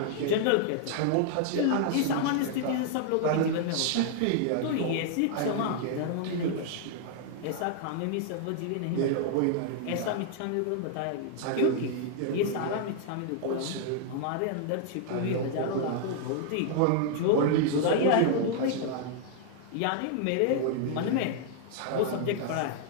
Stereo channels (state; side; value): different; both; correlation 0.00